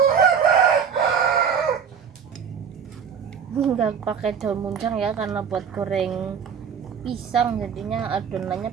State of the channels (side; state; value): left; quieter; 7.2 dB